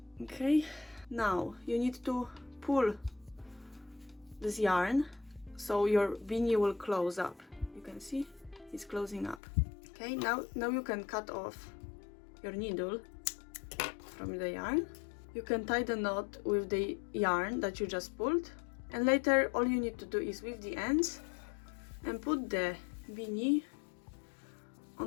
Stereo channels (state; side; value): drops out; right; at 9.4 s